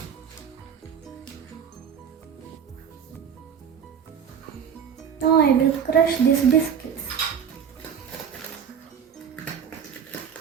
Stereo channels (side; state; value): left; quieter; 7.6 dB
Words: Now I will crush these biscuits.